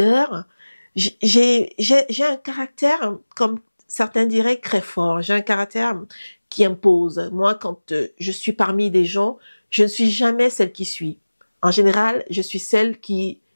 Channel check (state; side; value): inverted; both; correlation -1.00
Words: J'ai un caractère, comme certains diraient, très fort. J'ai un caractère qui impose. Moi, quand je suis parmi des gens, je ne suis jamais celle qui suit. En général, je suis celle qui